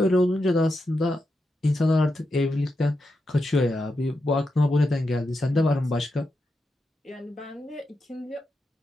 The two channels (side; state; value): both; normal; correlation 0.87